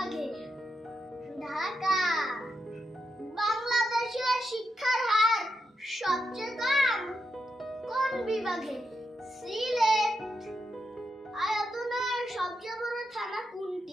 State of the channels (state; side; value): normal; both; correlation 0.85